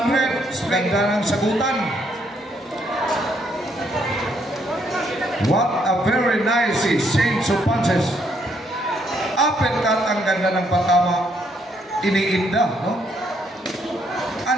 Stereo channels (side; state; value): both; normal; correlation 0.72